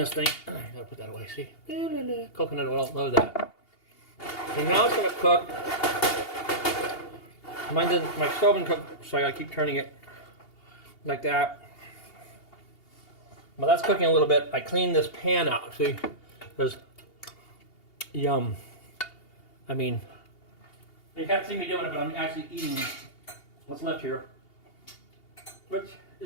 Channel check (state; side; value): late; right; 2.8 ms